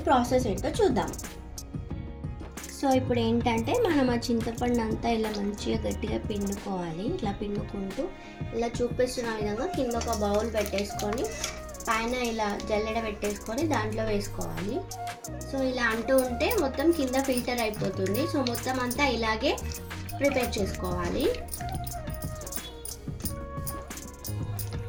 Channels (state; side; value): identical; both; correlation 1.00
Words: ప్రాసెస్ ఏంటో చూద్దాం. సో ఇప్పుడు ఏంటంటే మనం ఆ చింతపండు అంతా ఇలా మంచిగా గట్టిగా పిండుకోవాలి. ఇట్లా పిండుకుంటూ ఇలా చూపిస్తున్న విధంగా కింద ఒక బౌల్ పెట్టేసుకొని పైన ఇలా జల్లెడ పెట్టేసుకొని దాంట్లో వేసుకోవాలి. సో ఇలా అంటూ ఉంటే మొత్తం కింద ఫిల్టర్ అయిపోతుంది. సో మొత్తం అంతా ఇలాగే ప్రిపేర్ చేసుకోవాలి.